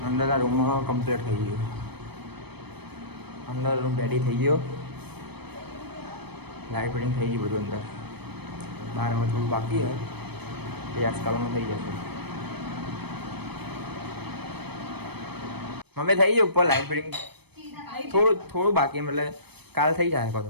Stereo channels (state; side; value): late; left; 0.97 ms